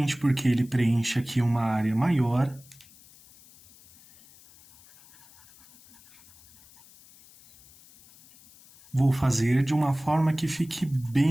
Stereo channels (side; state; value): left; noise; hiss, 25 dB below the sound